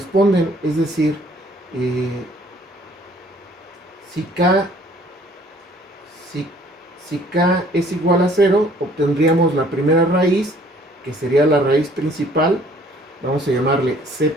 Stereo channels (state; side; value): normal; both; correlation 0.57